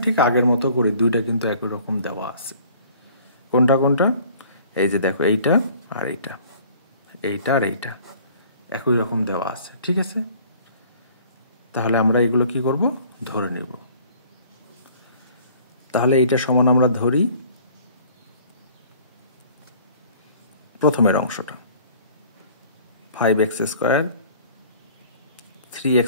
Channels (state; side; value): inverted; both; correlation -0.53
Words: ঠিক আগের মতো করে দুইটা কিন্তু একই রকম দেওয়া আছে। কোনটা কোনটা? এই যে দেখো এইটা আর এইটা, এইটা আর এইটা একই রকম দেওয়া আছে, ঠিক আছে? তাহলে আমরা এগুলো কি করব? ধরে নেব। তাহলে এইটা সমান আমরা ধরি প্রথমের অংশটা 5x স্কোয়ার 3x